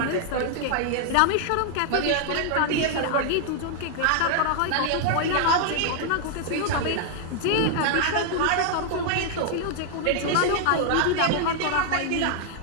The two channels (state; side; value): different; both; correlation 0.00